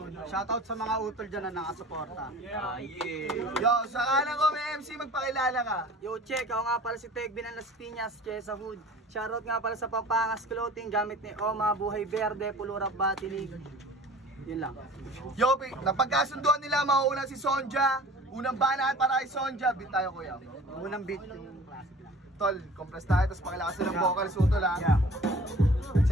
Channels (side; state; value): both; normal; correlation 0.45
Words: Shoutout sa mga utol dyan na nakasuporta. Yo, sa kanan ko may MC, magpakilala ka. Yo, check, ako nga pala si Tegbin ng Las Piñas, Chesa Hood. Shoutout nga pala sa Pampangas Clothing, gamit ni Oma, Buhay Verde, Pulurap Batinig. Yun lang. Yo, napagkasunduan nila, mauuna si Sonja. Unang banat para kay Sonja. Beat tayo, kuya. Unang beat. Tol, compress tayo, tapos pakilakas ng vocals utol ha. Yeah.